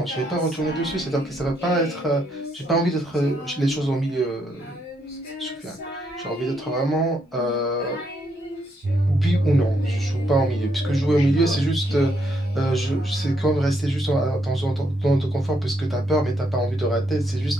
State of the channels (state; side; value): normal; both; correlation 0.75